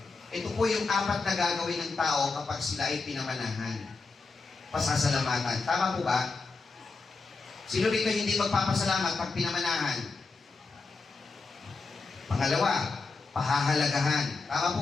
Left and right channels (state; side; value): quieter; right; 4.1 dB